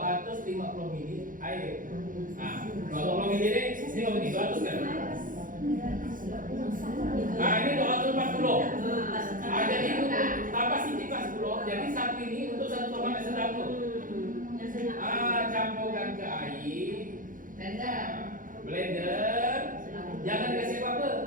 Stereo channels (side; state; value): left; late; 0.39 ms